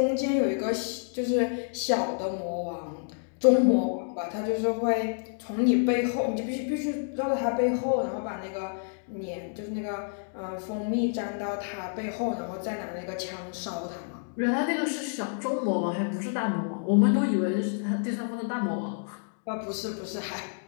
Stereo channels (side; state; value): right; silent; digital silence